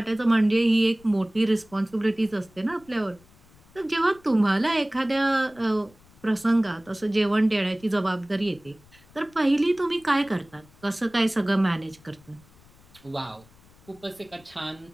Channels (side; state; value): left; noise; rumble, 27 dB below the sound